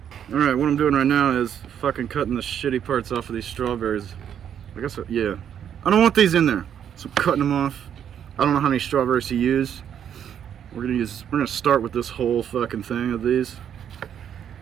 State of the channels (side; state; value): left; quieter; 9.0 dB